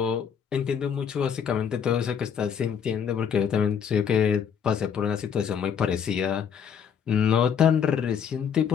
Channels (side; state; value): right; quieter; 7.6 dB